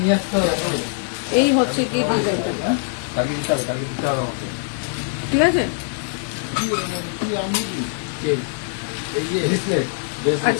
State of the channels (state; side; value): silent; right; digital silence